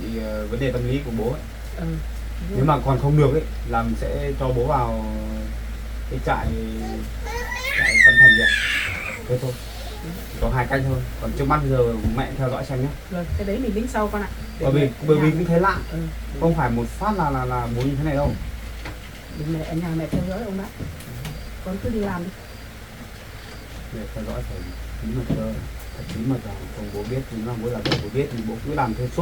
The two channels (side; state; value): both; identical; correlation 1.00